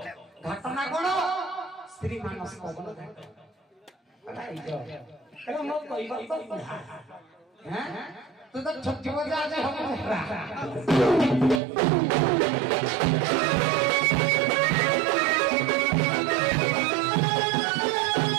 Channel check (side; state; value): left; drops out; at 11.6 s